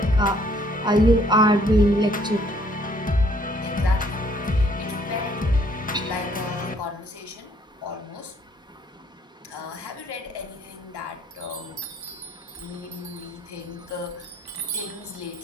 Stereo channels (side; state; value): both; normal; correlation 0.64